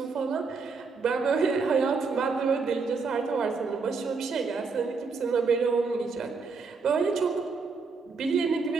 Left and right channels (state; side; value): quieter; left; 4.7 dB